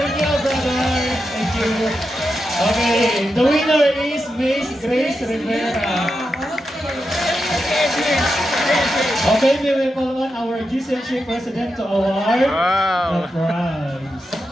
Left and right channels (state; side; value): normal; both; correlation 0.88